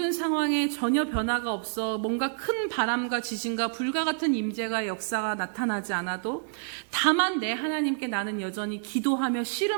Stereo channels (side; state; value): left; silent; 59 dB below the other